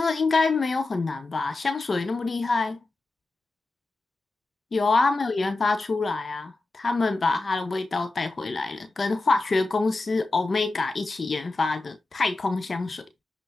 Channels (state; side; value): quieter; right; 3.3 dB